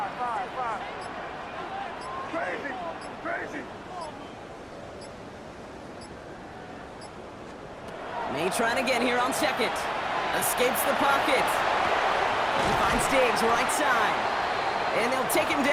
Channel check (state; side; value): identical; both; correlation 1.00